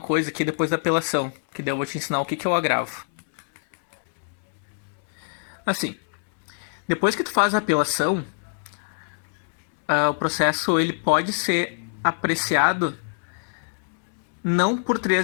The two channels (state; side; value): silent; right; 62 dB below the other